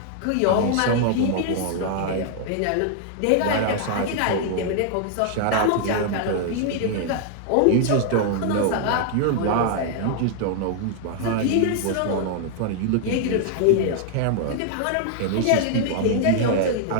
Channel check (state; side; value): different; both; correlation 0.00